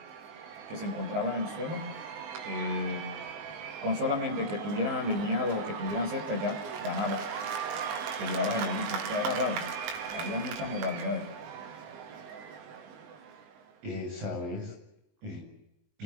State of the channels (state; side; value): late; left; 19 ms